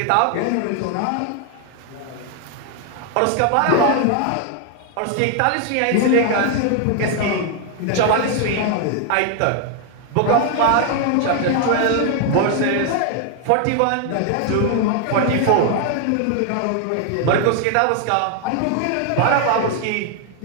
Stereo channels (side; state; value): both; different; correlation 0.00